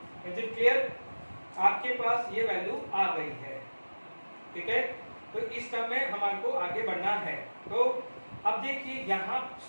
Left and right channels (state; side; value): inverted; both; correlation -1.00